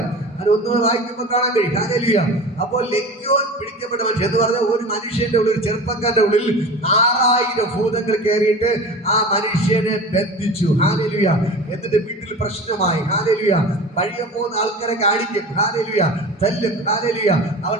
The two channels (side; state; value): both; normal; correlation 0.34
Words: അത് ഒന്നുകൂടെ വായിക്കുമ്പോൾ കാണാൻ കഴിയും. ഹല്ലേലൂയ. അപ്പോൾ ലെഗ്യോൻ പിടിക്കപ്പെട്ട മനുഷ്യൻ എന്ന് പറഞ്ഞാൽ ഒരു മനുഷ്യന്റെ ഉള്ളിൽ, ചെറുപ്പക്കാരുടെ ഉള്ളിൽ 6000 ഭൂതങ്ങൾ കയറിയിട്ട് ആ മനുഷ്യനെ ബന്ധിച്ചു. ഹല്ലേലൂയ. എന്നിട്ട് വീട്ടിൽ പ്രശ്നമായി. ഹല്ലേലൂയ. വഴിയെ പോകുന്ന ആൾക്കാരെ കാണിക്കും. ഹല്ലേലൂയ. തല്ലും. ഹല്ലേലൂയ. അവൻ